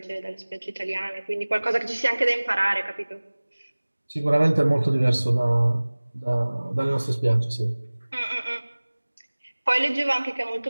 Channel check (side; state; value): both; inverted; correlation -1.00